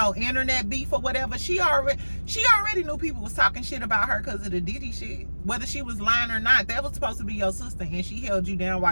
internet beef or whatever, she already knew people was talking shit about her because of the Diddy shit. Whether she was lying or not, that was supposed to be your sister, and she held you down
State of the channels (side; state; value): both; inverted; correlation -1.00